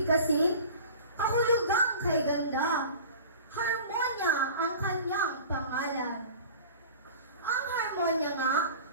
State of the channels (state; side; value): inverted; both; correlation -0.40